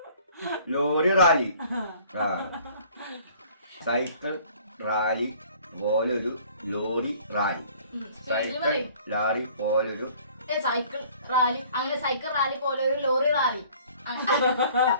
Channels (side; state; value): both; inverted; correlation -0.53